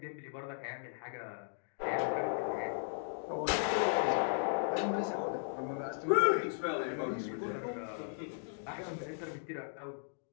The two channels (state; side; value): silent; right; digital silence